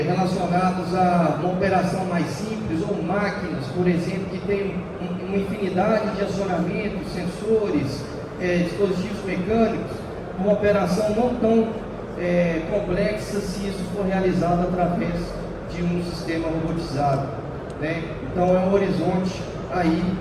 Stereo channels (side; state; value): both; identical; correlation 1.00